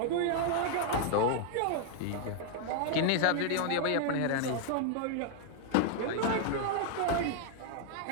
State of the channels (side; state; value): both; different; correlation 0.00